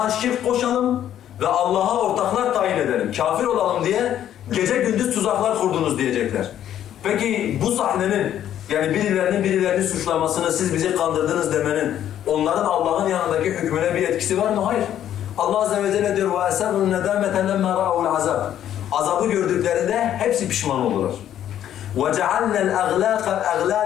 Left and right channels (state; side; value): quieter; right; 10.9 dB